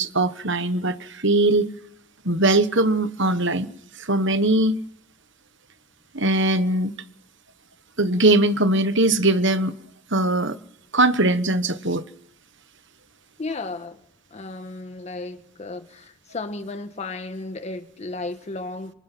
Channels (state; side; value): normal; both; correlation 0.21